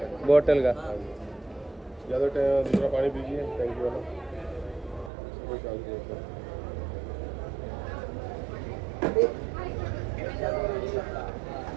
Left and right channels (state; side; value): drops out; left; at 5.1 s